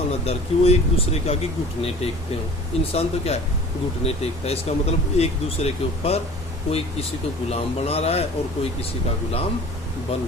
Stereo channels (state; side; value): normal; both; correlation 0.44